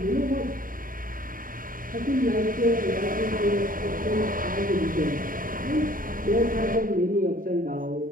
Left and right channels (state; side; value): late; left; 0.40 ms